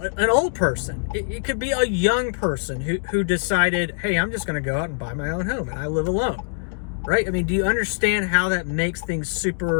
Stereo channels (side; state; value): right; silent; digital silence